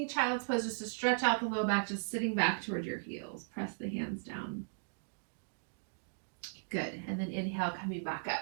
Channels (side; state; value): left; silent; digital silence